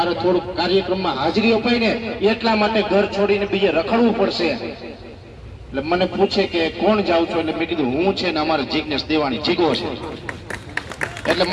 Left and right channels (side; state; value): both; identical; correlation 1.00